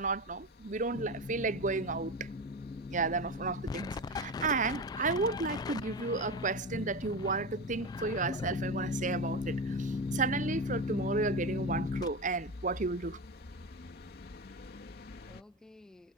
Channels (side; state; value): both; normal; correlation 0.21